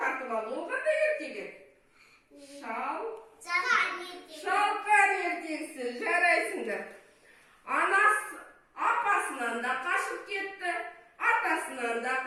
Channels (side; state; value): both; identical; correlation 1.00